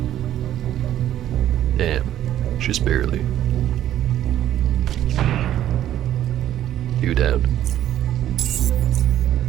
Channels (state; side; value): quieter; left; 11.9 dB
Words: Damn, just barely. Two down.